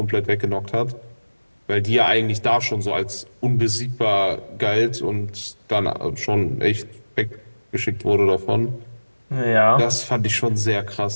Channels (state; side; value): inverted; both; correlation -1.00